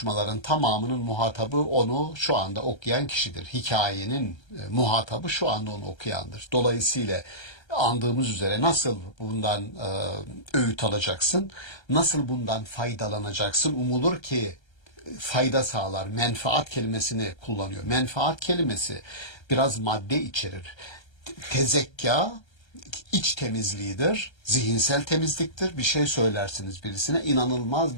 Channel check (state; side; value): late; right; 1.3 ms